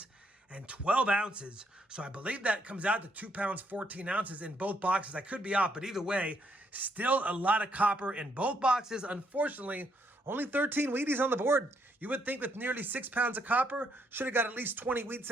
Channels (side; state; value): both; normal; correlation 0.73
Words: and 12 ounces. So I believe that comes out to 2 pounds, 14 ounces in both boxes. I could be off, but either way, still a lot of copper in both boxes. Unfortunately, only 13 Wheaties on the board. You would think with nearly 6 pounds of copper, should have got at least 20 wheat